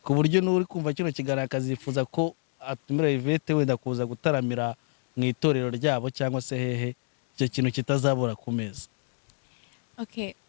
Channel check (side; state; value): right; silent; 59 dB below the other